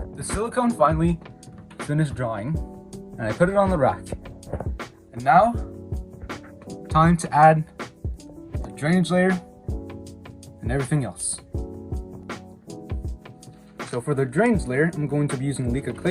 the silicone finally finished drying, and I put it on the rack. And now, time to add the drainage layer and everything else. So for the drainage layer, I'm going to be using Leica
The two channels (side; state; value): both; identical; correlation 1.00